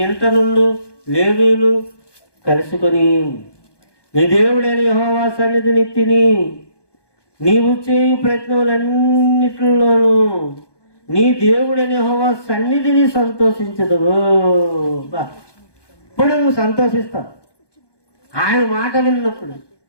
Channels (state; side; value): late; right; 1.2 ms